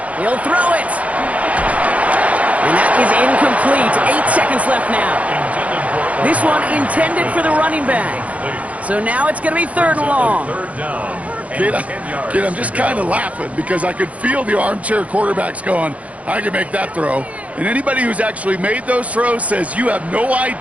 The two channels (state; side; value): late; left; 0.067 ms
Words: He'll throw it. And that is incomplete. 8 seconds left now. This one intended for the running back. So now it's going to be 3rd and long. 3rd down. Kid, I'm just kind of laughing because I could feel the armchair quarterbacks going, I can make that throw. And anybody who's actually made those throws says you have no